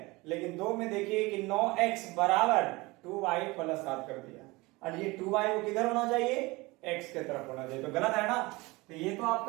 लेकिन दो में देखिए कि 9x बराबर 2y प्लस 7 कर दिया, और ये 2y को किधर होना चाहिए, x के तरफ होना चाहिए, तो गलत है ना। तो ये तो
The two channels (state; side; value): quieter; left; 22.8 dB